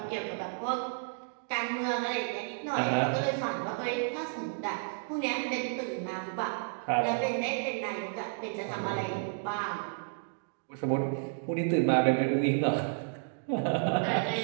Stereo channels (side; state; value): left; silent; digital silence